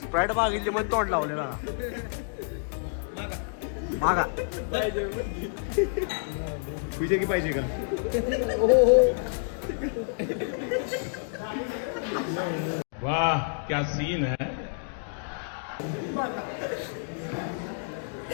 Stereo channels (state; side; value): silent; right; digital silence